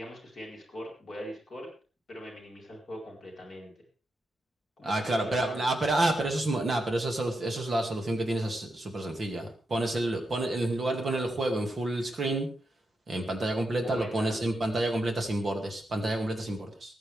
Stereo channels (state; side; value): normal; both; correlation 0.86